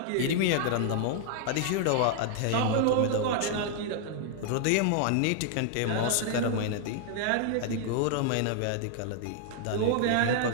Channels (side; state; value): both; different; correlation -0.01